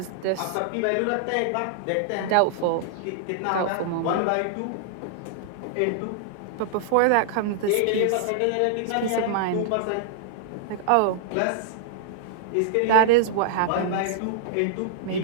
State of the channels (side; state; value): both; different; correlation -0.01